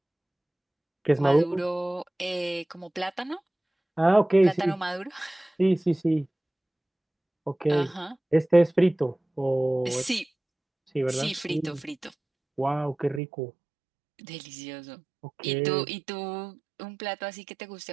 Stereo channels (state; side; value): drops out; left; at 13.2 s